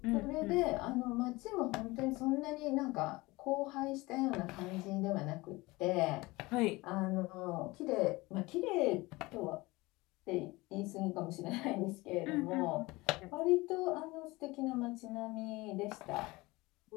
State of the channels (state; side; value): quieter; right; 21.9 dB